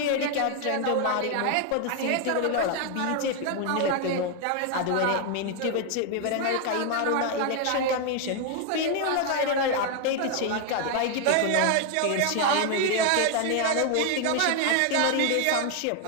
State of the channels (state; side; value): different; both; correlation 0.01